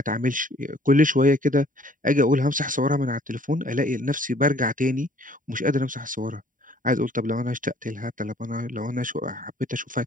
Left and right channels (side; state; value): left; late; 0.39 ms